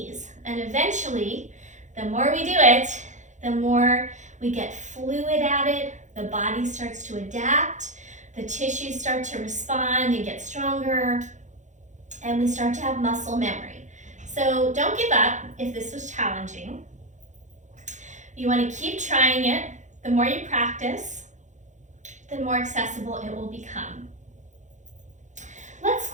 And eventually, the more we do it, the more we get fluid at it, The body starts to adapt, the tissues start to respond and get stronger, and we start to have muscle memory. So don't give up if this was challenging. You want to keep trying it. The more you practice, the more accessible it will become. Let's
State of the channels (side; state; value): left; late; 0.35 ms